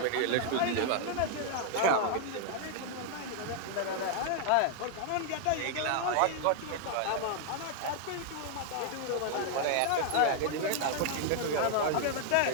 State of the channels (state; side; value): different; both; correlation 0.00